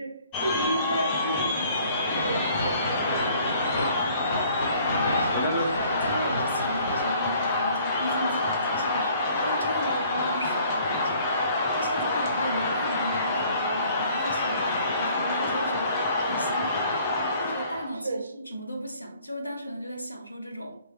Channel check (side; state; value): both; inverted; correlation -0.57